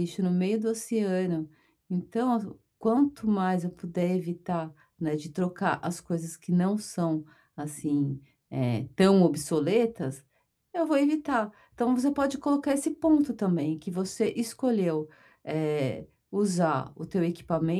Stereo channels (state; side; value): identical; both; correlation 1.00